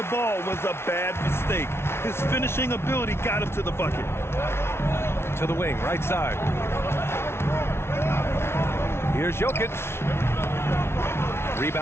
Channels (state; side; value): late; right; 0.12 ms